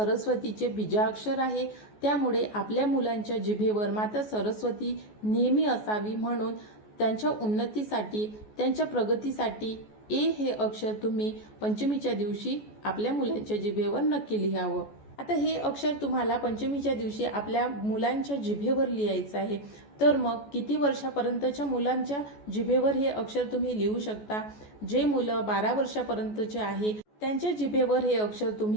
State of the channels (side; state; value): right; late; 14 ms